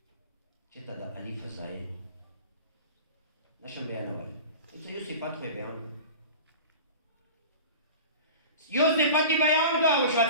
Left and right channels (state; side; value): inverted; both; correlation -0.37